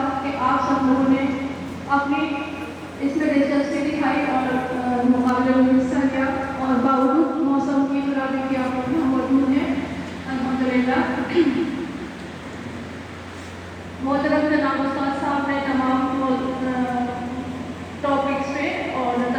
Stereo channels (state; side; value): identical; both; correlation 1.00